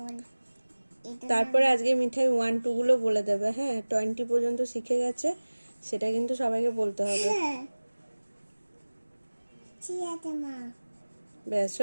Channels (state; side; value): inverted; both; correlation -1.00